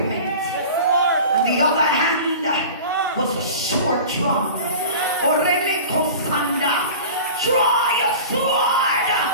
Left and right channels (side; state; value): both; inverted; correlation -0.37